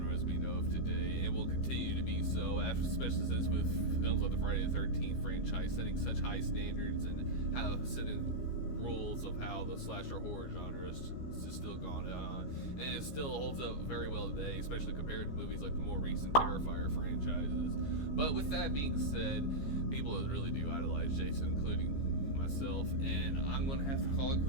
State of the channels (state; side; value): late; right; 15 ms